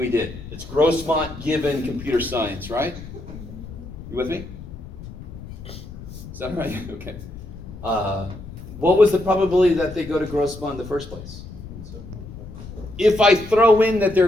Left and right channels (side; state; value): left; noise; rumble, 13 dB below the sound